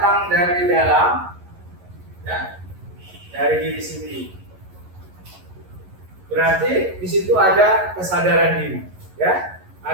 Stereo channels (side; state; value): left; late; 11 ms